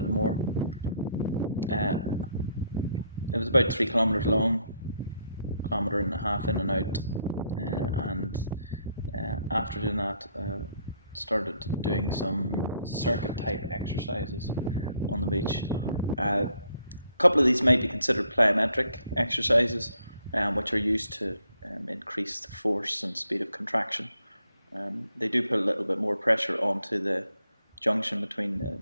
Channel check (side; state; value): both; inverted; correlation -0.70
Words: more. Uh, it was about 3 kilometers long, 1.5 kilometers in and out, and after doing that, started doing some circuit type exercises on the beach. A couple of these might be considered plyometric exercises, which are used to increase the force and speed of contraction. They do put a little bit more pressure onto the junction between the